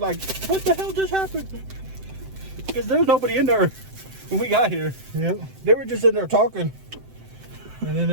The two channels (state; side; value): late; left; 7.8 ms